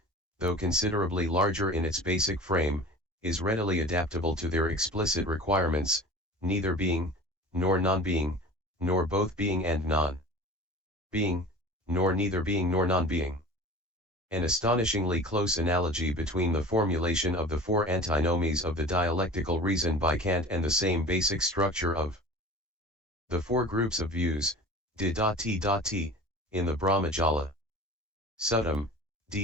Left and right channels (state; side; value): normal; both; correlation 0.39